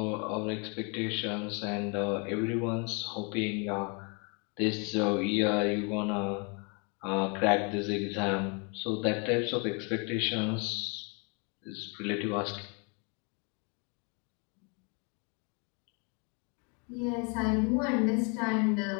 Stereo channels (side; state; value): right; quieter; 34.1 dB